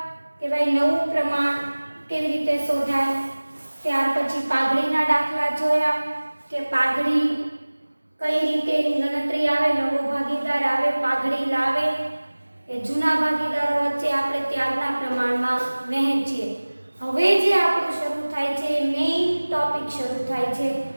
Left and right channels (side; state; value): both; inverted; correlation -1.00